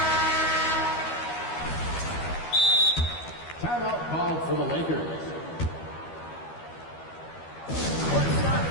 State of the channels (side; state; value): right; late; 12 ms